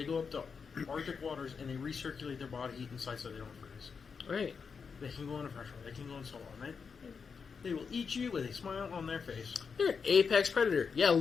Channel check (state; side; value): quieter; right; 5.7 dB